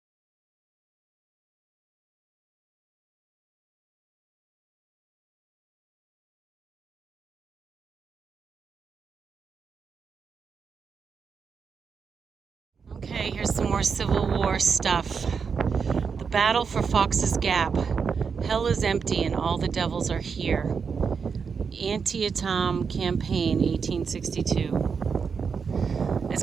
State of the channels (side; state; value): left; quieter; 5.9 dB